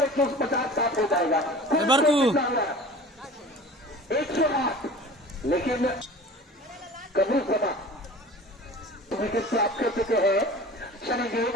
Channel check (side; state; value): both; normal; correlation 0.40